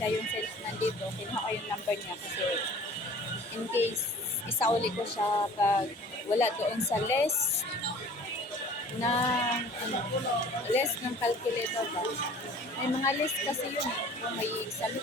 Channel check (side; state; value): both; normal; correlation 0.47